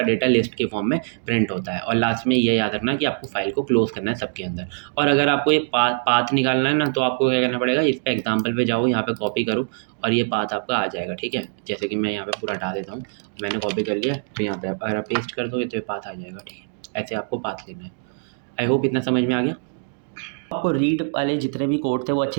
डेटा लिस्ट के फॉर्म में प्रिंट होता है। और लास्ट में ये याद रखना कि आपको फाइल को क्लोज करना है सबके अंदर। और अगर आपको ये पाथ निकालना है ना तो आपको क्या करना पड़ेगा, इस पर एग्जाम्पल पे जाओ, यहाँ पे कॉपी करो और ये पाथ आपका आ जाएगा, ठीक है। जैसे कि मैं यहाँ पे पूरा हटा देता हूँ, मैंने कॉपी कर लिया, तो यहाँ पे अगर आप पेस्ट कर दोगे तो ये पाथ आ जाएगा, ठीक है। ऐसे आपको पाथ लेना है। आई होप इतना समझ में आ गया। आपको रीड वाले जितने भी कोड थे वो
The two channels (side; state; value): left; silent; digital silence